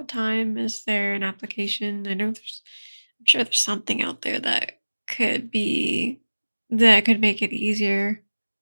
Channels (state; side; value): inverted; both; correlation -1.00